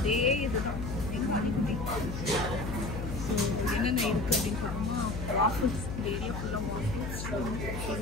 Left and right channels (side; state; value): left; noise; hum, 5 dB below the sound